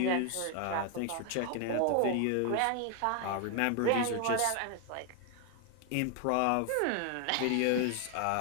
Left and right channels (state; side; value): different; both; correlation 0.00